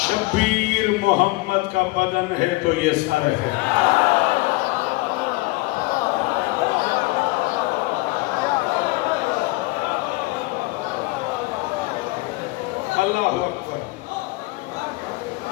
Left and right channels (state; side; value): quieter; right; 22.6 dB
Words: محمد کا بدن ہے تو یہ سر ہے اللہ اکبر.